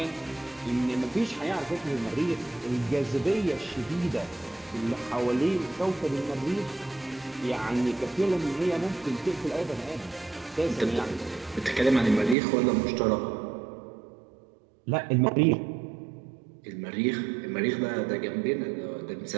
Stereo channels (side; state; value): left; drops out; at 12.4 s